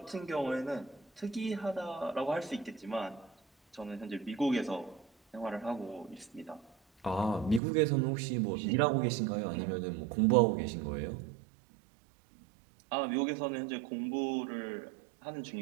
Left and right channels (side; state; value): left; drops out; at 7.6 s